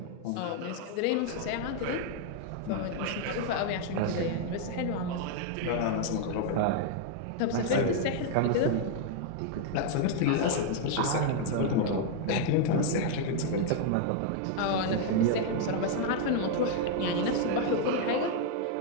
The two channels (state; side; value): different; both; correlation 0.00